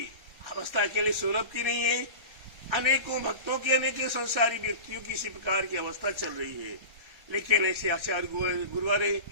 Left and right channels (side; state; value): left; late; 1.4 ms